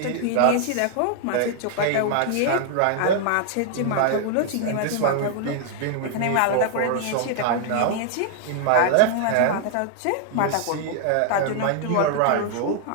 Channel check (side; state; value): both; different; correlation 0.00